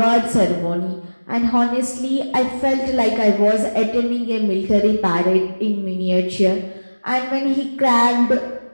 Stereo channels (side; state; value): both; inverted; correlation -1.00